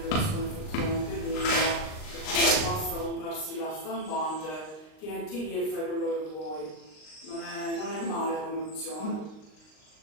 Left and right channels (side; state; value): right; late; 39 ms